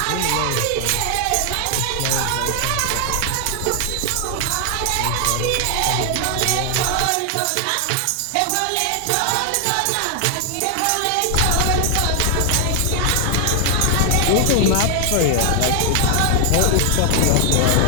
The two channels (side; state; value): both; different; correlation 0.00